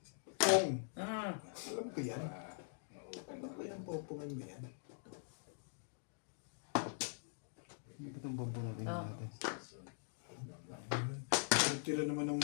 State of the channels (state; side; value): silent; right; digital silence